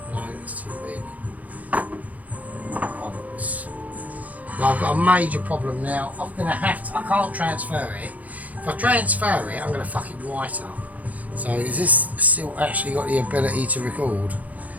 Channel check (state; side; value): late; left; 0.075 ms